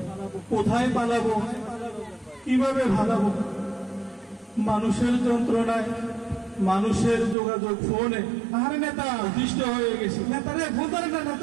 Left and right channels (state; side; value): drops out; left; at 7.4 s